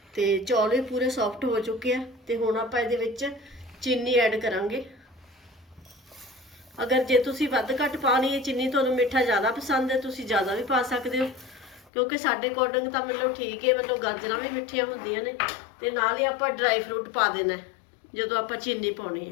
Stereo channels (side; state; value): right; drops out; at 11.9 s